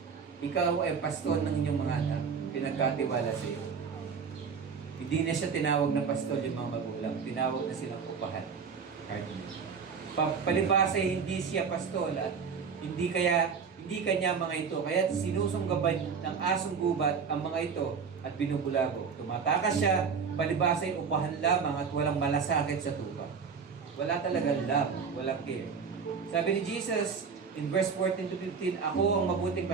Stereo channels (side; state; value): left; quieter; 5.9 dB